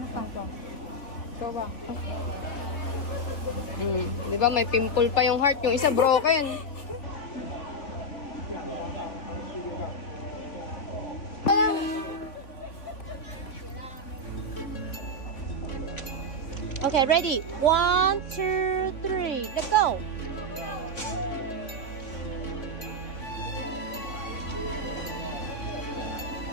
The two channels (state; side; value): late; right; 3.6 ms